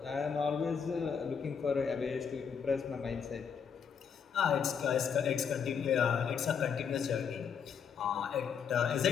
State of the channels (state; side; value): quieter; right; 6.8 dB